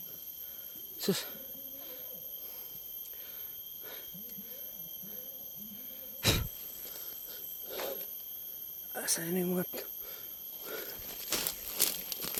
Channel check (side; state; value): both; identical; correlation 1.00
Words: Sus. Asan yung mga...